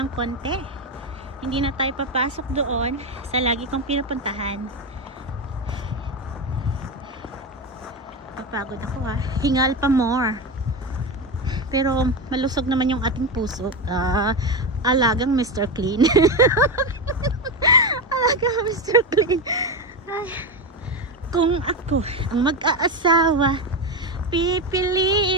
ng konti. Hindi na tayo papasok doon sa lagi kong pinupuntahan. Papagod ako ha. Hingal pa more. Pero malusog naman yung ating puso. Alagang Mr. Clean. Alagang Mr. Clean. Ay, kung ako ang mag-aasawa,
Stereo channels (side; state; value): both; normal; correlation 0.16